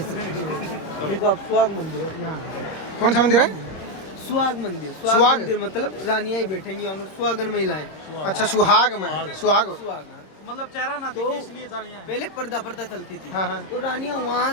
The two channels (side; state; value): right; late; 26 ms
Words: देखो आप सुहाग मंदिर है। कौन सा मंदिर है? सुहाग मंदिर। सुहाग मंदिर मतलब रानियां ही बैठेंगी वहाँ, सुहागन महिलाएं। अच्छा सुहाग में। सुहाग मतलब चेहरा ना दिखे इसलिए रानियां पहले पर्दा पर्दा चलती थी। हाँ हाँ। तो रानियां